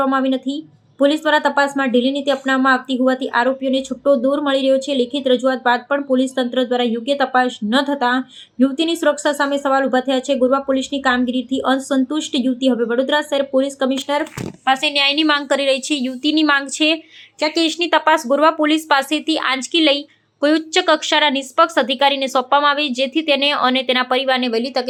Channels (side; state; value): both; identical; correlation 1.00